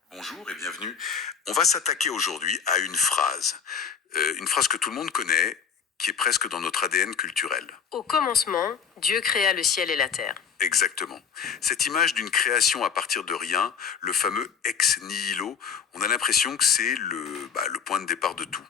Bonjour et bienvenue. On va s'attaquer aujourd'hui à une phrase que tout le monde connaît, qui est presque dans notre ADN culturel. Au commencement, Dieu créa le ciel et la terre. Exactement. Cette image d'une création à partir de rien, le fameux ex nihilo, on a l'impression que c'est le point de départ de tout.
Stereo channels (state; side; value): quieter; right; 6.9 dB